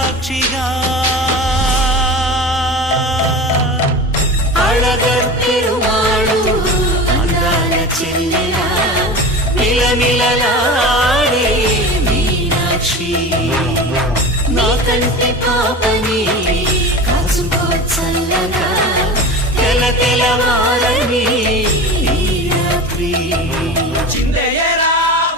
అళగర్ పెరుమాళు అందాల చెల్లెలా మిలమిలలాడే మీనాక్షి, నా కంటి పాపని కాచుకో చల్లగా తెల తెలవారని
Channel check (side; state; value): both; normal; correlation 0.31